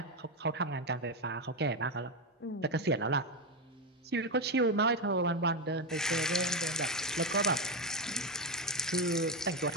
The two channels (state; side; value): normal; both; correlation 0.10